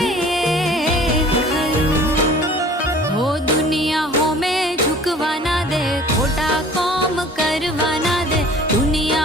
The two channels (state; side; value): normal; both; correlation 0.48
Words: खरूं। हो दुनिया हो में झुकवाना दे, खोटा काम करवाना दे।